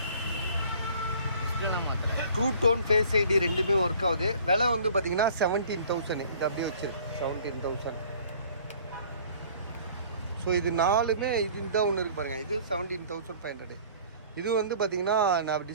ட்ரூ டோன், ஃபேஸ் ஐடி ரெண்டுமே ஒர்க் ஆகுது. விலை வந்து பார்த்தீங்கன்னா 17,000. இது அப்படியே வச்சிருக்கு 17,000. ஸோ இது நாலுமே இந்த ஒன்று இருக்குது பாருங்கள். இது 17,500. இது வந்து பார்த்தீங்கன்னா நான்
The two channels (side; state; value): both; inverted; correlation -0.51